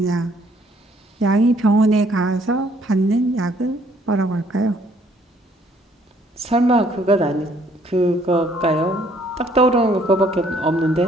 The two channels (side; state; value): both; normal; correlation 0.64